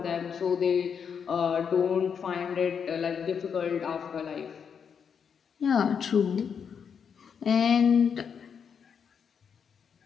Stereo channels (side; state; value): right; quieter; 6.9 dB